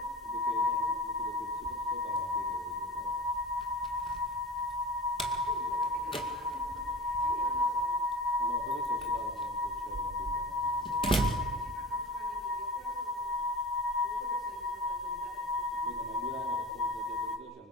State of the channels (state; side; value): normal; both; correlation 0.34